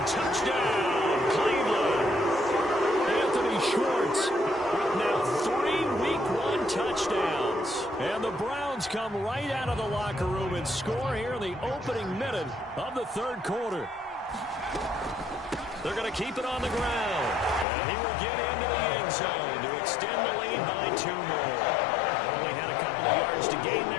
Touchdown, Cleveland. Anthony Schwartz with now 3 week one touchdowns. And the Browns come right out of the locker room and score here in the opening minute of the third quarter. They're going to keep it on the ground. And he will get into the end zone to extend the lead by 2 more. Only had a couple of yards to gain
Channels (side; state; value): right; drops out; at 17.7 s